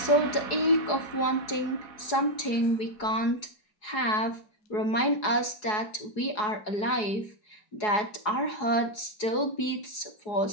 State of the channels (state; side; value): late; right; 4.8 ms